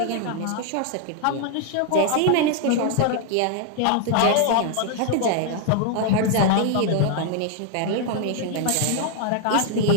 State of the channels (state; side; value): different; both; correlation 0.00